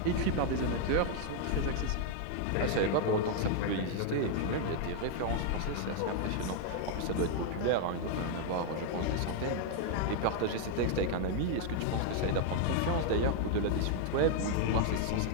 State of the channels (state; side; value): different; both; correlation 0.00